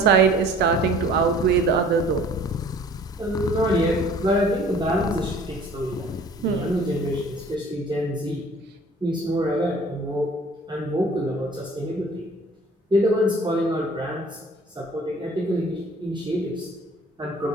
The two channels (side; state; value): both; normal; correlation 0.50